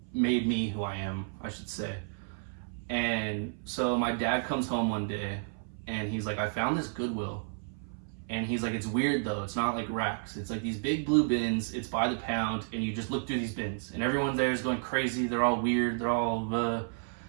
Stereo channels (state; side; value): silent; left; 57 dB below the other